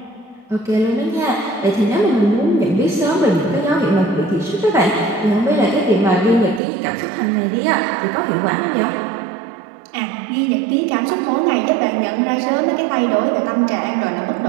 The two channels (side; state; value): left; drops out; at 6.6 s